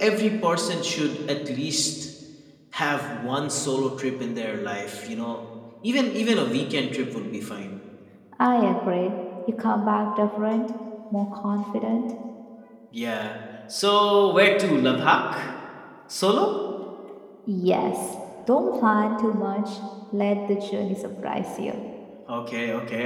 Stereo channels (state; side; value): identical; both; correlation 1.00